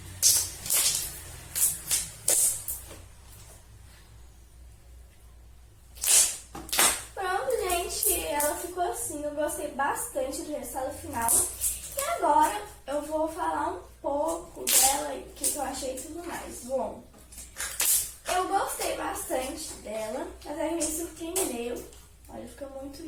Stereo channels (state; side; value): identical; both; correlation 1.00